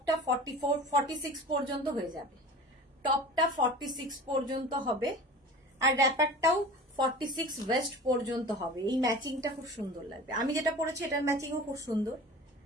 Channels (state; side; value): normal; both; correlation 0.38